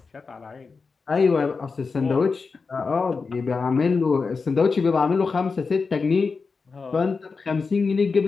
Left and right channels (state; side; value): quieter; right; 4.7 dB